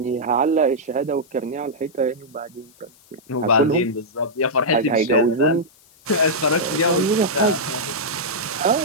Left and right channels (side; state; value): left; noise; hiss, 29 dB below the sound